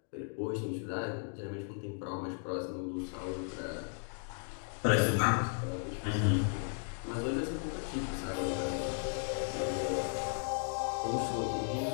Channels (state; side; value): silent; right; 54 dB below the other